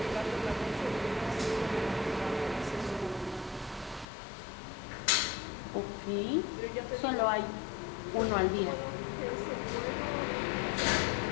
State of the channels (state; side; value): drops out; right; at 4.0 s